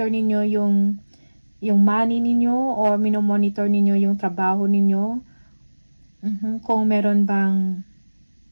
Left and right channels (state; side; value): inverted; both; correlation -1.00